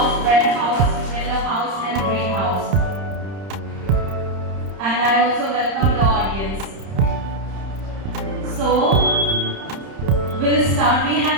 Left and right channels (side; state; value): left; late; 30 ms